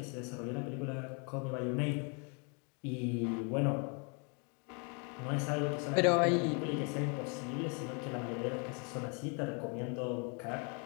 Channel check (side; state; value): right; quieter; 36.0 dB